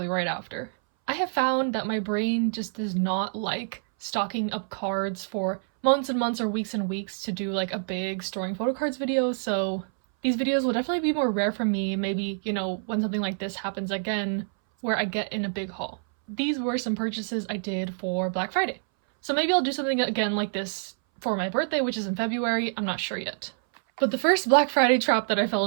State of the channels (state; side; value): silent; left; 60 dB below the other